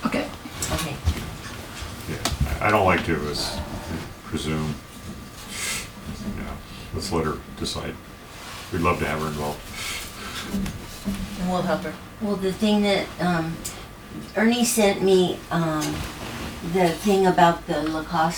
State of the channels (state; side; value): identical; both; correlation 1.00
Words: Okay. okay. Yeah. I don't like to presume. You know, let's let her decide. We'd love to have her involved. And we'll help her. Well, the thing that, Ernie sent me, the thing about the La